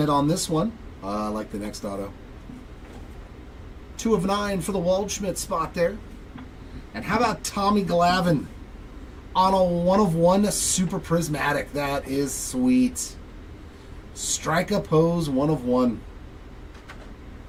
on this one. I like the next auto. 2 of 9 for the Waldschmidt spot there. And how about Tommy Glavine on a 1 of 1 Super Prismatic? That is sweet. Strike a pose 1 of 1.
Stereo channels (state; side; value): identical; both; correlation 1.00